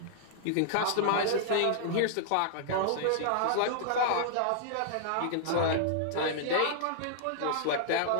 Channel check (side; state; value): both; different; correlation -0.01